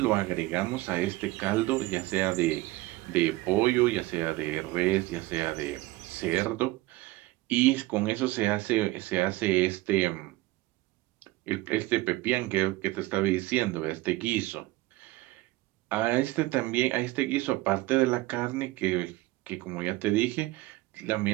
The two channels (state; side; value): quieter; left; 18.9 dB